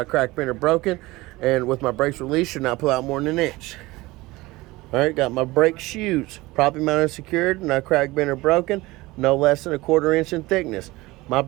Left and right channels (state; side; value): quieter; left; 20.4 dB